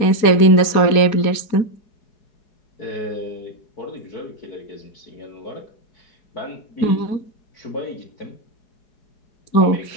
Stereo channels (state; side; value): late; right; 4.7 ms